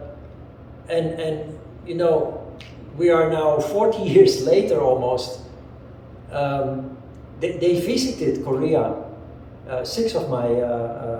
and you know, we are now 40 years later almost. They visited Korea. 6 of my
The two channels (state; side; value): identical; both; correlation 1.00